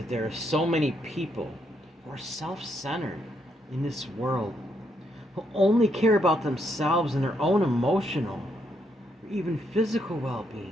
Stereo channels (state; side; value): normal; both; correlation 0.76